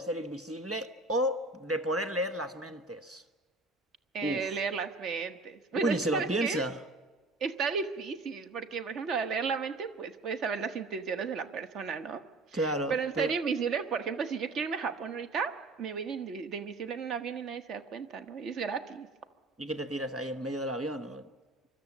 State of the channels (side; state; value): left; quieter; 3.2 dB